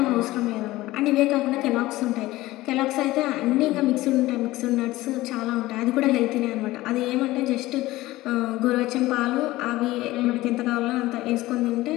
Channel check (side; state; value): right; quieter; 17.8 dB